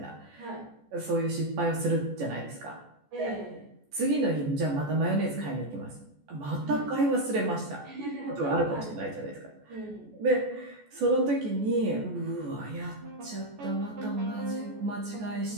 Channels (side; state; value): left; late; 14 ms